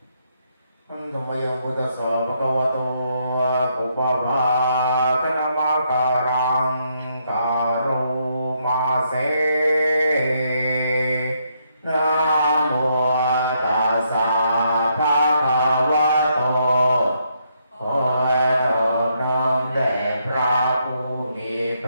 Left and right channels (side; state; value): both; inverted; correlation -0.75